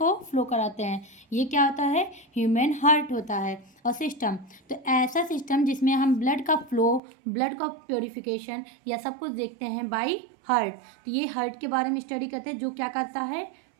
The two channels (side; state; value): left; drops out; at 7.0 s